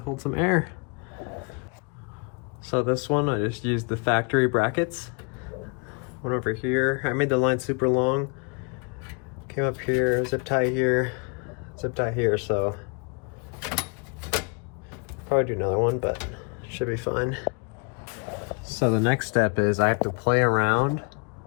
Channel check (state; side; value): quieter; right; 35.6 dB